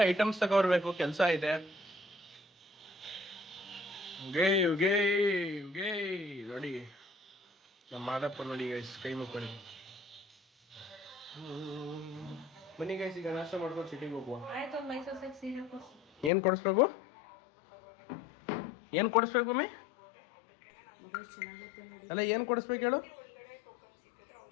ಐಟಮ್ಸ್ ತಗೊಬರ್ಬೇಕು, ಕೆಲಸ ಇದೆ. ನೋಡಿ ನಮ್ಮ ಮಾದಪ್ಪ ನೋಡಿ ಗೈಸ್, ಕೈ ಮುಕ್ಕೊಳ್ಳಿ. ಬನ್ನಿ ಗೈಸ್, ಈಗ ನಾಷ್ಟ ಮಾಡ್ಕೊಂಡು ಸಿಟಿಗೆ ಹೋಗುವ. ಏನು ಕೊಡಿಸ್ಬೇಕು ಮಮ್ಮಿ? ಅಲ್ಲ, ಏನು ಕೊಡಿಸ್ಬೇಕು ಹೇಳು?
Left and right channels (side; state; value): right; drops out; at 16.3 s